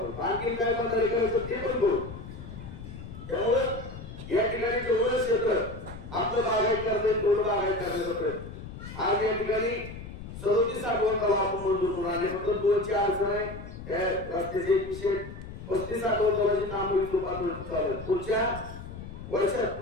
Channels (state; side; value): noise; left; rumble, 12 dB below the sound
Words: आणखी काय बंधारे करायचं ते पण करू. त्यामुळे या ठिकाणी जेवढं क्षेत्र आपलं बागायत करता तेवढं बागायत करण्याचा प्रयत्न. आज या ठिकाणी 37 साठवण तलाव आपण मंजूर करून आणि फक्त 2ची अडचण आहे. त्या रस्त्याचे 135 साठवण तलावाची कामं पातळी चालू आहे. पुढच्या वर्षात